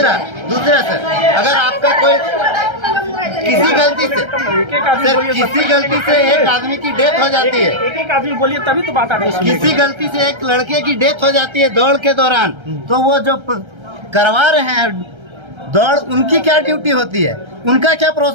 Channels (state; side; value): late; left; 1.3 ms